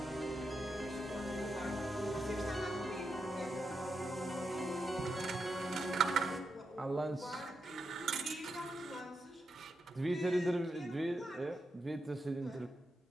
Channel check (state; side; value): normal; both; correlation 0.85